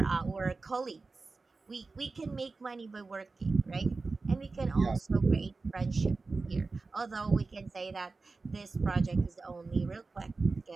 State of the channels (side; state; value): left; quieter; 3.9 dB